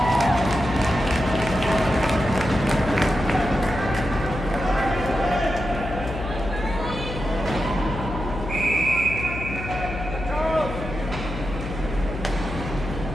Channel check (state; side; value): noise; left; hum, 8 dB below the sound